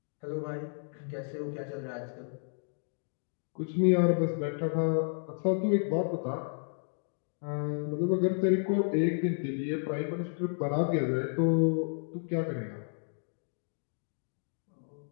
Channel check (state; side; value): silent; right; digital silence